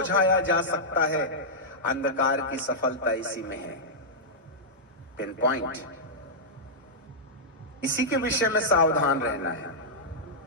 जा सकता है, अंधकार की सफलता इसी में है। Pin point. इसी के विषय में सावधान रहना है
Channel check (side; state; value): both; normal; correlation -0.10